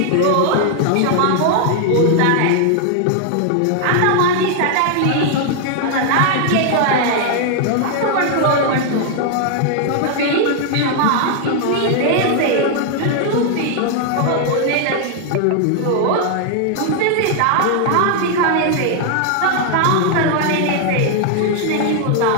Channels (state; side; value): different; both; correlation 0.00